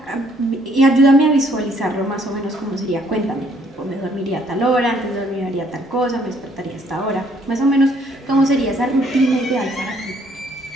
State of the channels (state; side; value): normal; both; correlation 0.65